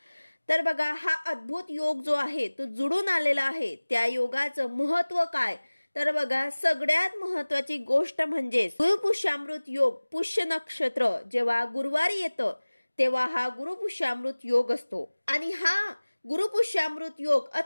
तर बघा हा अद्भुत योग जो आहे तो जुळून आलेला आहे. त्या योगाचं महत्त्व काय तर बघा सगळ्यात महत्त्वाची गोष्ट म्हणजे गुरुपुष्यामृत योग. पुष्य नक्षत्र जेव्हा गुरुवारी येतं तेव्हा हा गुरुपुष्यामृत योग असतो आणि हा गुरुपुष्यामृत योग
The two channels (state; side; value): inverted; both; correlation -1.00